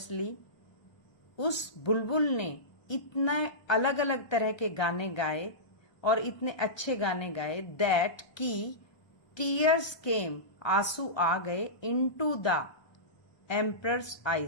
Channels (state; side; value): late; right; 1.3 ms